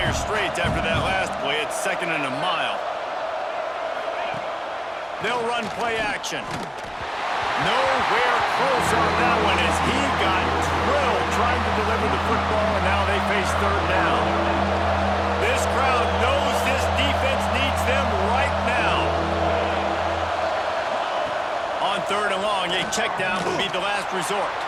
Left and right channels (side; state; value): both; identical; correlation 1.00